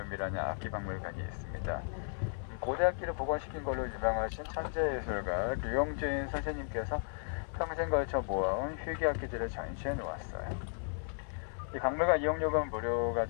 악기박물관이 있습니다. 고대 악기를 복원시킨 걸로 유명하신 천재예술가 류용진 선생님께서 평생 걸쳐 모아온 희귀 악기들을 전시해 놓았어요. 이 박물관 이용료가 무료가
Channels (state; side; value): silent; right; 54 dB below the other